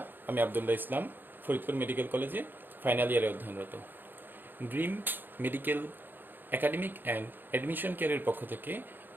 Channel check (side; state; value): left; late; 0.094 ms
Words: আমি আব্দুল্লাহ ইসলাম ফরিদপুর মেডিকেল কলেজে ফাইনাল ইয়ারে অধ্যয়নরত। Dream medical academic and admission কেয়ারের পক্ষ থেকে